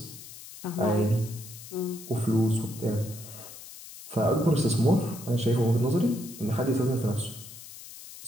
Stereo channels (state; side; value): noise; left; hiss, 15 dB below the sound